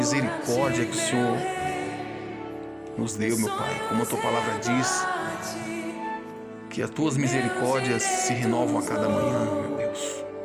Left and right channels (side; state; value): both; identical; correlation 1.00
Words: que o Senhor nos deu, meu Pai. Como a tua palavra diz, que as tuas misericórdias se renovam a cada manhã, meu Deus.